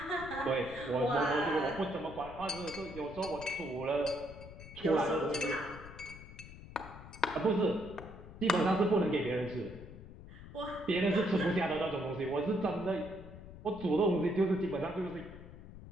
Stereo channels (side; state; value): left; noise; rumble, 15 dB below the sound